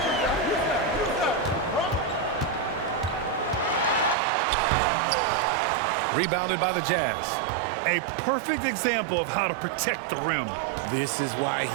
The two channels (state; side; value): drops out; left; at 4.2 s